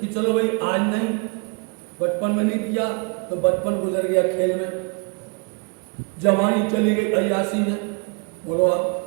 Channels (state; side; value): quieter; left; 32.8 dB